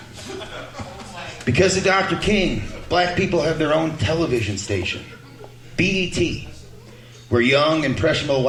Because of Dr. King, black people have their own television station, BET, where young, impressionable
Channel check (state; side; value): identical; both; correlation 1.00